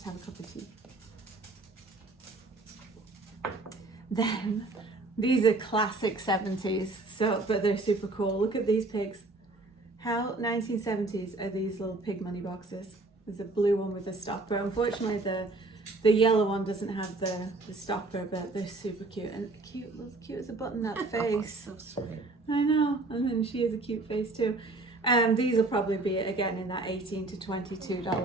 have a cup of tea. Then these are classic 70s, but they're super cool. Look at these pigs. How 1970s are these little pig money boxes? There's a blue one with a stopper. Unfortunately, the yellow one doesn't have the stopper, but they're super cute. And cute as a button, that face. So sweet. I know. And then she has a cute face too. These will probably be, again, in that $18 to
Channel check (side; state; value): left; quieter; 3.1 dB